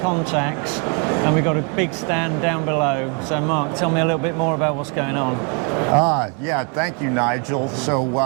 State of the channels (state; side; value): quieter; left; 37.4 dB